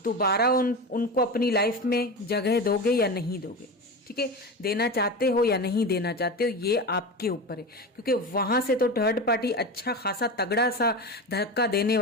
दोबारा उनको अपनी लाइफ में जगह दोगे या नहीं दोगे, ठीक है, देना चाहते हो या नहीं देना चाहते हो, ये आपके ऊपर है। क्योंकि वहां से तो थर्ड पार्टी अच्छा खासा तगड़ा सा धक्का देने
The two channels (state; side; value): normal; both; correlation 0.24